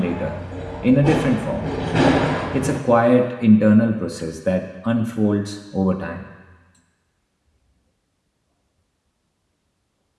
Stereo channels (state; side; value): identical; both; correlation 1.00